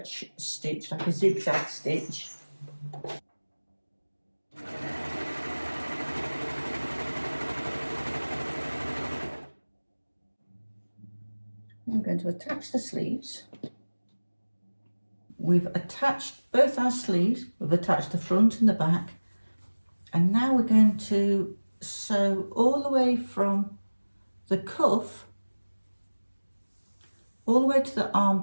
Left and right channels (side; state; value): both; inverted; correlation -1.00